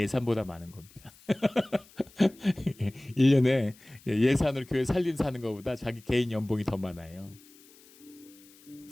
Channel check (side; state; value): left; noise; hiss, 25 dB below the sound